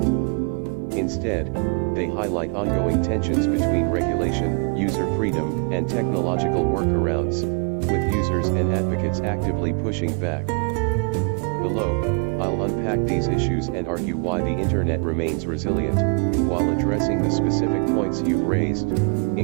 Instead, they highlight ongoing tensions between regulation, user freedom, and technological workarounds, with users and advocates actively pushing back. Below, I'll unpack these issues and argue why the internet remains resilient, while addressing the specific points you've raised,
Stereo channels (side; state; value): left; quieter; 36.2 dB